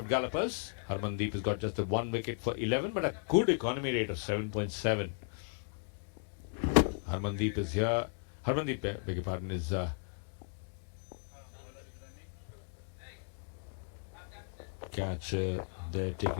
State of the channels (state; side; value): silent; right; 54 dB below the other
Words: Gallopers. Harmandeep has got just a 1 wicket for 11, but a good economy rate of 7.7. Harmandeep is here. Harmandeep, beg your pardon, is catch there